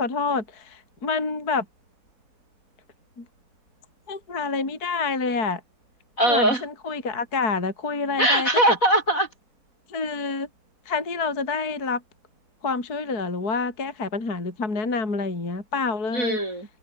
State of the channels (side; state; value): right; late; 4.1 ms